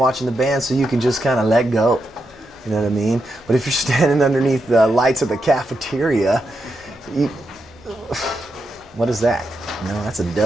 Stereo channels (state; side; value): noise; left; rumble, 29 dB below the sound